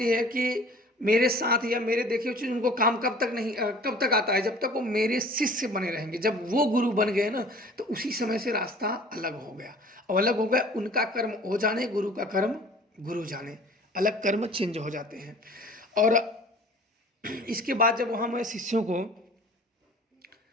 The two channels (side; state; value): both; normal; correlation 0.47